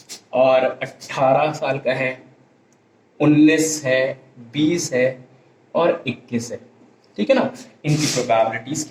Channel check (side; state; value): both; identical; correlation 1.00